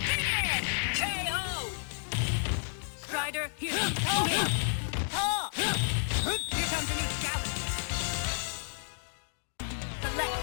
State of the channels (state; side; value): silent; right; digital silence